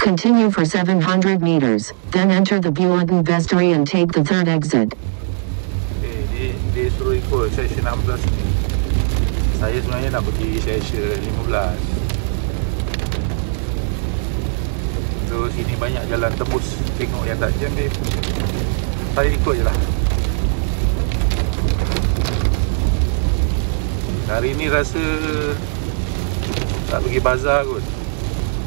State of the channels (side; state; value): left; silent; digital silence